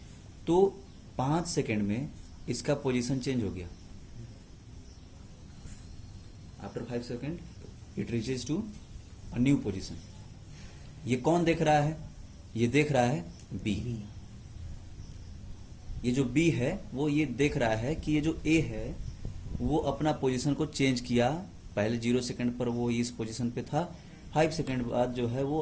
तो 5 सेकेंड में इसका पोजीशन चेंज हो गया। After 5 second it reaches to a new position. ये कौन देख रहा है? ये देख रहा है B। ये जो B है वो ये देख रहा है कि ये जो A है वो अपना पोजीशन को चेंज किया। पहले 0 सेकेंड पर वो इस पोजीशन पे था, 5 सेकेंड बाद जो है वो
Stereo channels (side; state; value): both; identical; correlation 1.00